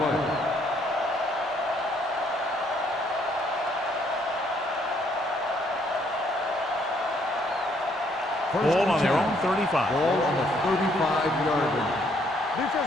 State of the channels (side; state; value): both; normal; correlation 0.68